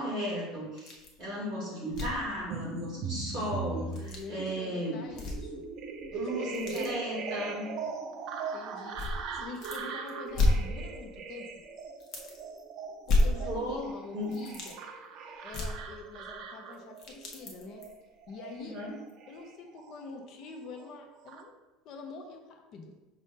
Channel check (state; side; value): normal; both; correlation 0.57